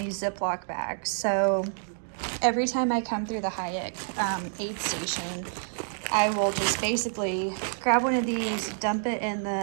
Ziploc bags. So every time I come through the Hayek aid station, I will just basically grab one of these, dump it in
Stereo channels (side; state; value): left; silent; digital silence